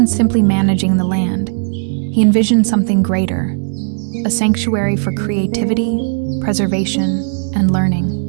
simply managing the land, he envisioned something greater, a sanctuary for creativity, preservation, and learning.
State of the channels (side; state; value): left; silent; digital silence